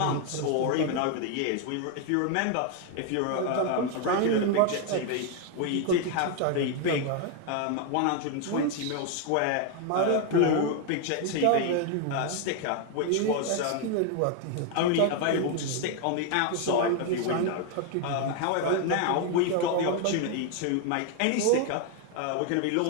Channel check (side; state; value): both; different; correlation 0.01